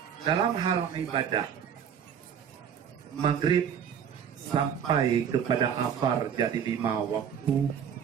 dalam hal ibadah, maghrib sampai kepada asar jadi 5 waktu,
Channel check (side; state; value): left; quieter; 8.1 dB